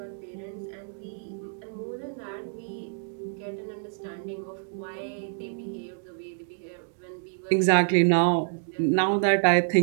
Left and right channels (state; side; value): silent; left; digital silence